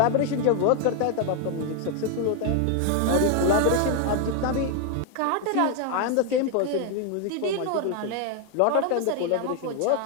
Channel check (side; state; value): both; different; correlation 0.01